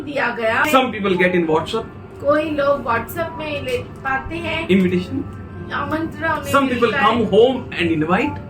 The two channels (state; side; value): identical; both; correlation 1.00